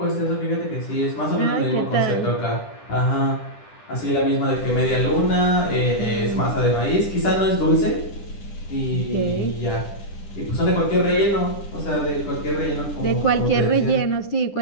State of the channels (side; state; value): right; late; 10 ms